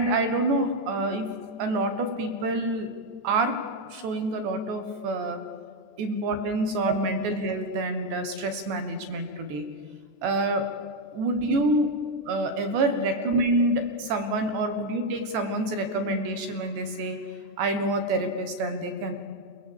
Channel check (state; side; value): late; left; 14 ms